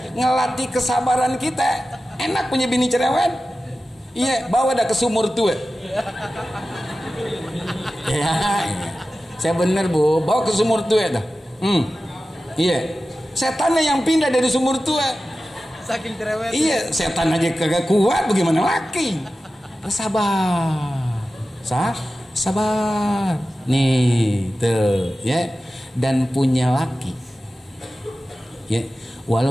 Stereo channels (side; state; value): both; normal; correlation 0.94